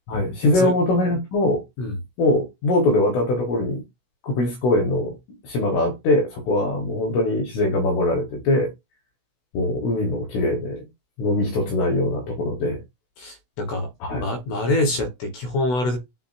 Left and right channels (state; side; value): late; right; 16 ms